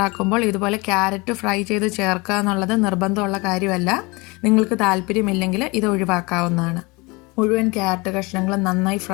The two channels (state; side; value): quieter; right; 25.9 dB